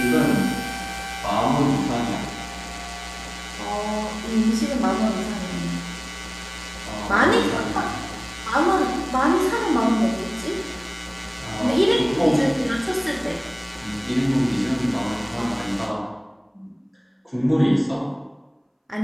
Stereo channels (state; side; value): identical; both; correlation 1.00